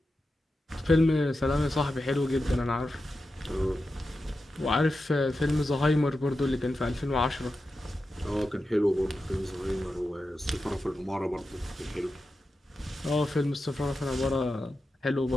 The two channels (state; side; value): normal; both; correlation 0.91